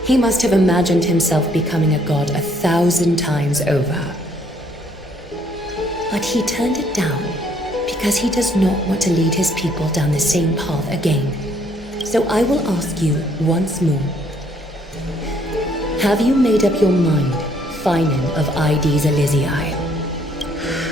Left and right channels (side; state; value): both; normal; correlation 0.66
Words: he must have imagined himself becoming a god 1,000 times over. But he turned it down because he does not want to lead his people down the same path again. So I will ask you once more. Have you made up your mind, Finan of ID's Elysiae?